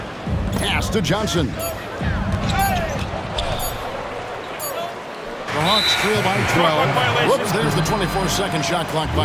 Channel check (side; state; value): both; identical; correlation 1.00